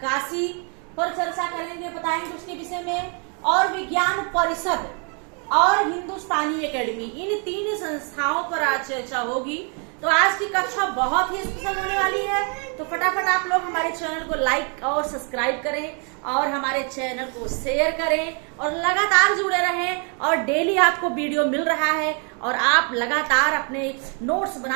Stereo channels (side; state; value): left; quieter; 38.5 dB